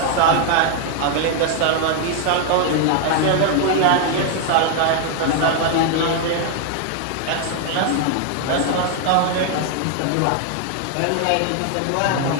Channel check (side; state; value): both; different; correlation 0.00